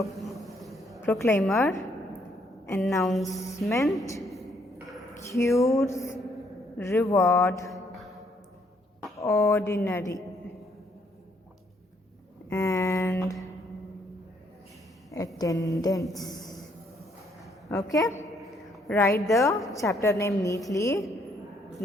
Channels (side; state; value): both; normal; correlation 0.69